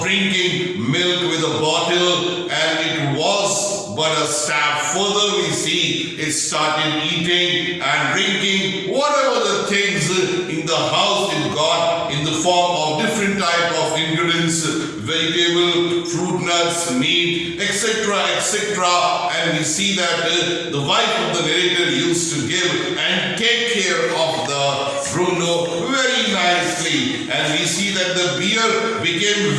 drinking milk with a bottle, and it was but a step further. We see it started eating and drinking whatever the things in the house it got in the form of different type of ingredients, vegetable, fruit, nuts, meat, etc., etc. And we see that the wife of the narrator used to give and take care of the Bruno very nicely. And we see that the bear became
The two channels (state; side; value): identical; both; correlation 1.00